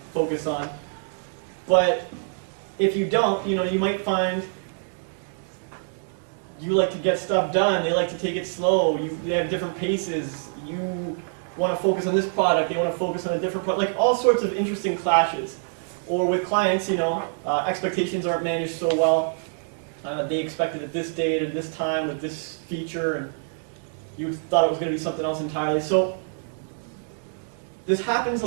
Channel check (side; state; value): left; silent; digital silence